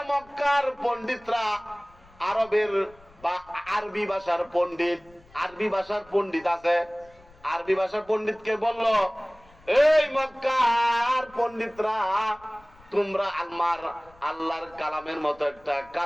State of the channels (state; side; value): noise; left; rumble, 27 dB below the sound